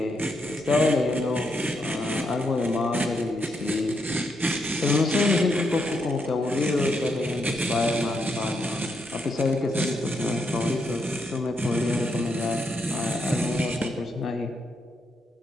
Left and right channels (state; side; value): normal; both; correlation 0.80